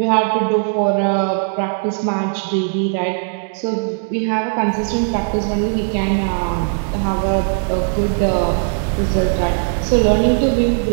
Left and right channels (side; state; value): left; silent; 64 dB below the other